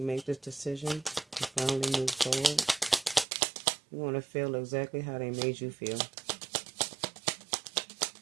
make this decision to finally move forward. You want to feel exactly how they made you feel.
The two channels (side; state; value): left; drops out; at 3.2 s